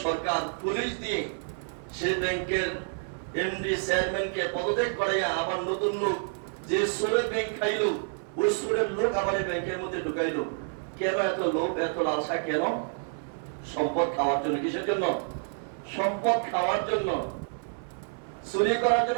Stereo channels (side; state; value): left; silent; 58 dB below the other